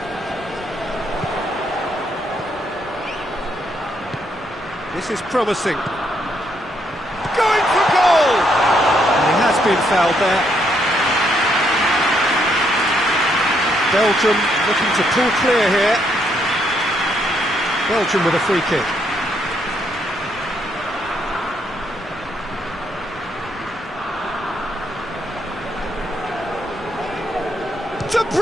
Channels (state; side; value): noise; right; rumble, 23 dB below the sound